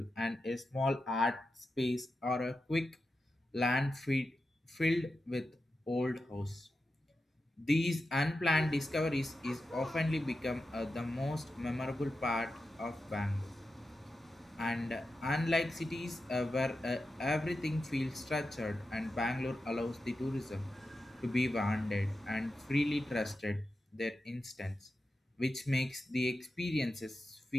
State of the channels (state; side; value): normal; both; correlation 0.90